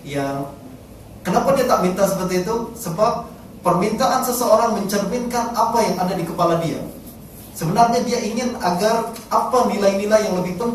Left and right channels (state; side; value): identical; both; correlation 1.00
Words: yang kenapa dia tak minta seperti itu? Sebab permintaan seseorang mencerminkan apa yang ada di kepala dia. Sebenarnya dia ingin agar apa nilai-nilai yang lebih